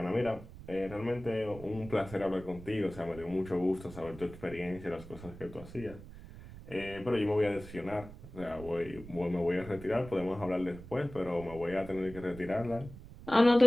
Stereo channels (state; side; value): noise; right; rumble, 15 dB below the sound